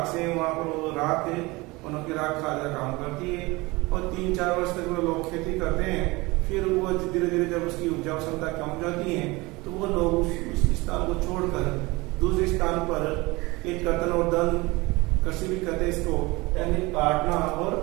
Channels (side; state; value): left; quieter; 23.0 dB